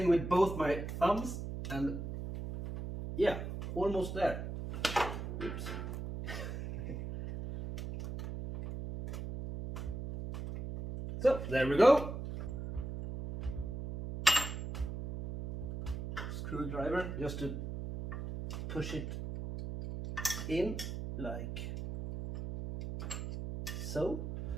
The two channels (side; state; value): right; noise; hum, 6 dB below the sound